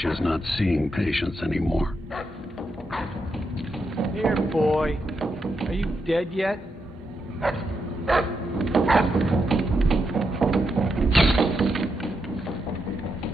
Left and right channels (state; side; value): normal; both; correlation 0.83